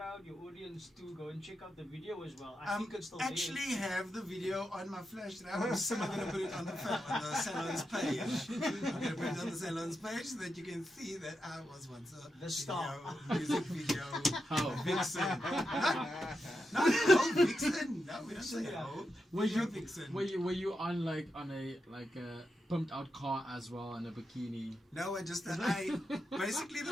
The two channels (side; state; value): both; normal; correlation 0.86